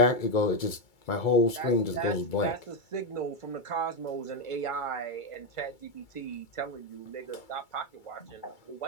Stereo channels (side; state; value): right; late; 2.3 ms